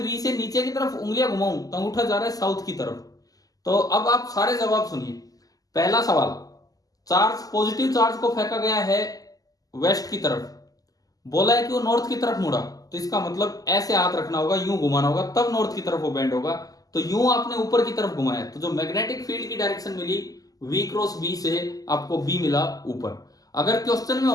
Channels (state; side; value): late; right; 0.17 ms